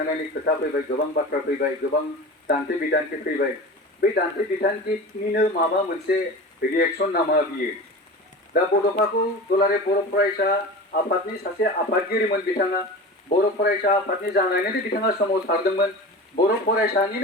खोथा फैबाय गोबां बाथ्रा फैबाय गोबां दान्थे बिदान्थे फैबाय बे दान्थे बिदान्थेनिनो माबा मोनसे रिएक्शन नामा बियो दा बड'फाखौ दुलाराय बर' फरायसा आफादनि सासे आफादगिरिमोन बिथाङा बर' फरायसा आफादनि जानानैनो बिथाङा सोमावसारदोंमोन बर'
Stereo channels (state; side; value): normal; both; correlation 0.33